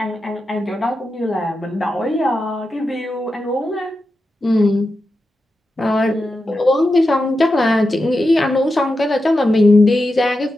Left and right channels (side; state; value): both; normal; correlation 0.90